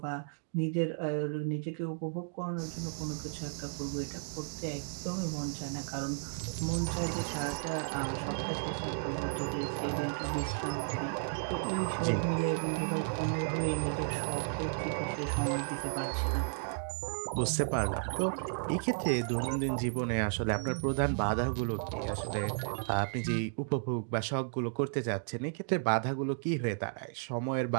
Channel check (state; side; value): silent; left; digital silence